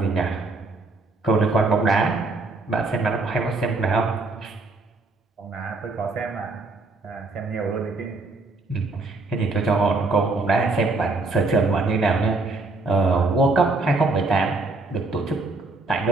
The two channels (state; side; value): quieter; left; 3.4 dB